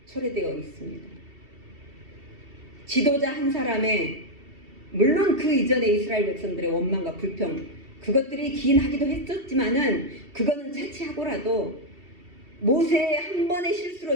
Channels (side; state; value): left; late; 2.7 ms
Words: 초래되어 있습니다. 지도자 한 사람의, 물론 그 이전에 이스라엘 백성들의 원망과 불평, 그것들이 기인하기도 했었지만은 그거는 차치하고라도 모세의 한 번의 실수로